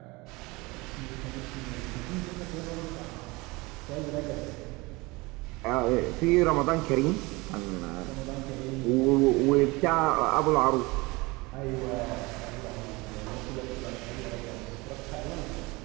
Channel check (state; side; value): quieter; left; 23.9 dB